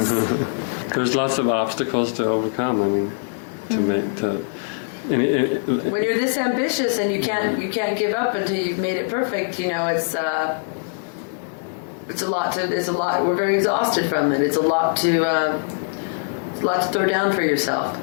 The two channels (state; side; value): silent; right; digital silence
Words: There's lots of obstacles to overcome to make the. When you're this ambitious and you can't give up until you've made it perfect, it's a lot. We're very exhausted from it. It's a lot to throw down for yourself.